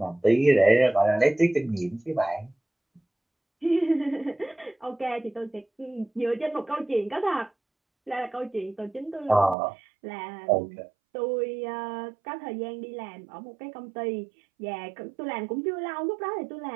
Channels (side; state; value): left; drops out; at 9.6 s